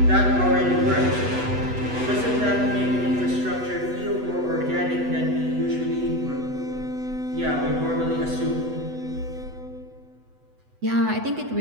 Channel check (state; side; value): late; left; 8.1 ms